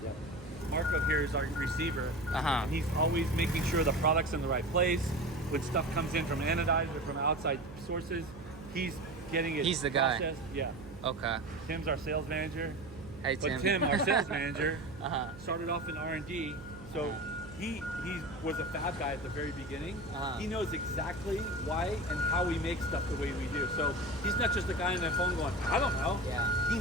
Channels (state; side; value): noise; right; hum, 15 dB below the sound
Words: Yeah. Marco here is our receiver, and he's always making sure the product's in the right place. When stuff comes in from anodized or from outside sources, he's getting it. He's the guy. processed. Yeah. Okay. Tim's our sales manager. Hey Tim. But Tim, our sales manager, started off in R&D, so he was a fab guy at the very beginning. He knows exactly why and how we make stuff the way we do. So he's not just a guy on the phone going, I don't know. Yeah. He